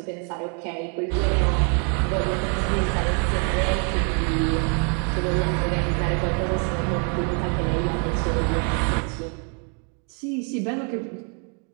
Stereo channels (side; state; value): left; quieter; 38.8 dB